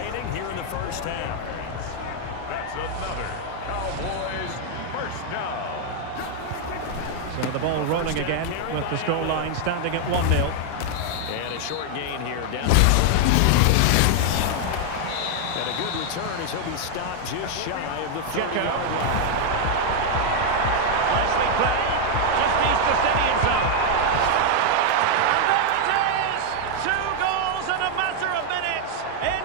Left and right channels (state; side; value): different; both; correlation 0.00